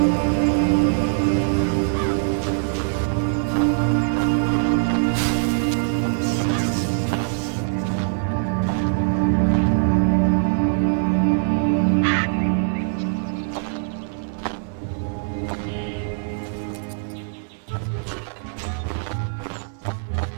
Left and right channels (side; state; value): left; silent; digital silence